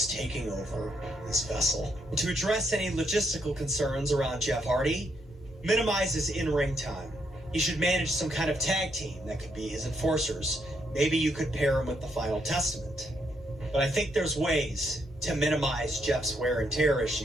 taking over this vessel. To address any logistical concerns around Jeff Hardy, minimize his in-ring time. He should manage some kind of tag team that could be his enforcers. Maybe you could pair him with the Final Testament. But I think there's ways to minimize Jeff's wear and tear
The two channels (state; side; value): normal; both; correlation 0.76